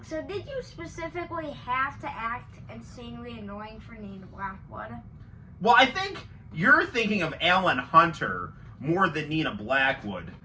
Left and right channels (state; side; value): identical; both; correlation 1.00